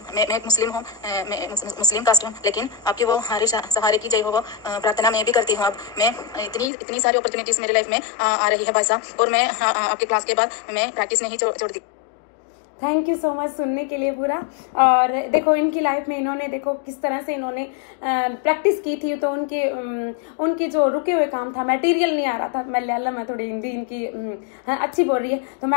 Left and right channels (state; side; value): drops out; right; at 6.7 s